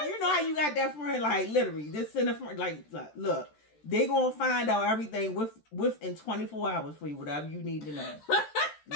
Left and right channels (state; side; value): late; right; 13 ms